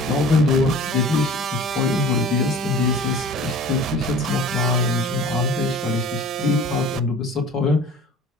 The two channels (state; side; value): normal; both; correlation 0.43